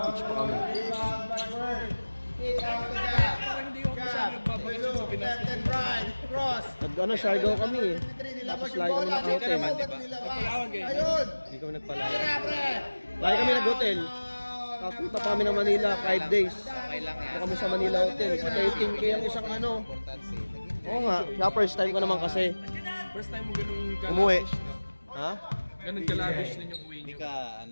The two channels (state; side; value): inverted; both; correlation -1.00